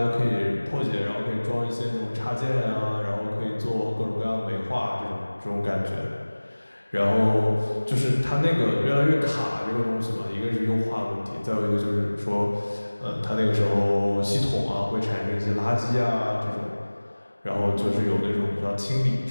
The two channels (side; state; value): both; inverted; correlation -1.00